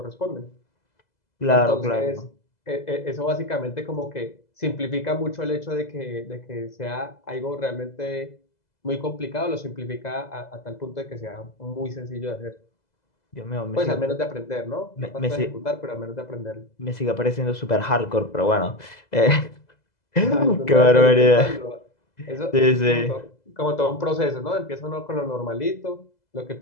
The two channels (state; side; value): late; right; 2.0 ms